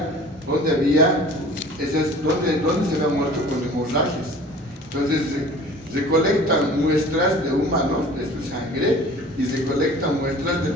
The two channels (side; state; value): both; normal; correlation 0.45